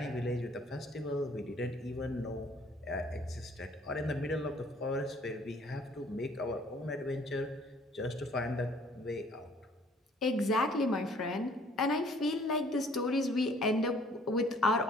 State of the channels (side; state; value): both; normal; correlation 0.58